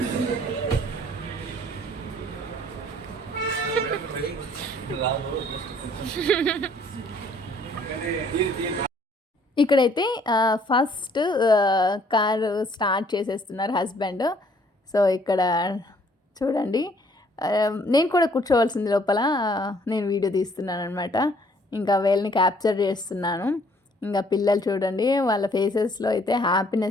ఇక్కడైతే ఫస్ట్ కారు స్టార్ట్ చేసేస్తున్నారు హస్బెండ్. సో ఇక్కడ చూడండి, నేను కూడా కూర్చోవలసింది లోపల, నేను వీడియో తీస్తున్నాను అనమాట. ఇంకా వీళ్ళని క్యాప్చర్ చేస్తున్నాను. ఇంకా పిల్లలు చూడండి, వాళ్ళ ఫేసెస్లో అయితే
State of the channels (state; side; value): normal; both; correlation 0.61